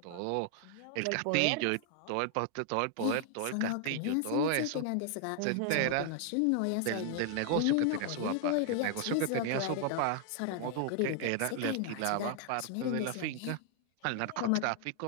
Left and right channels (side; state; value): both; different; correlation 0.00